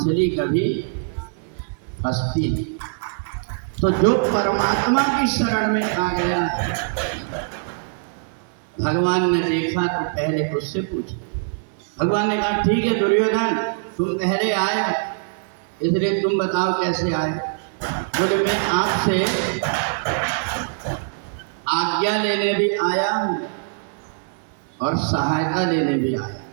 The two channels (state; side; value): silent; left; 63 dB below the other